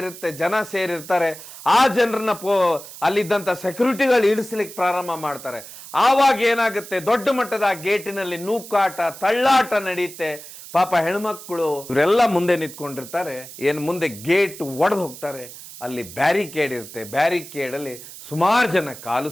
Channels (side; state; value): right; noise; hiss, 15 dB below the sound